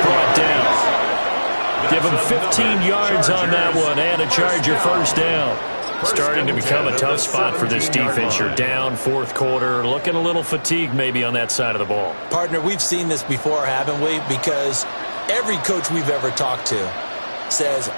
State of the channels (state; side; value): inverted; both; correlation -1.00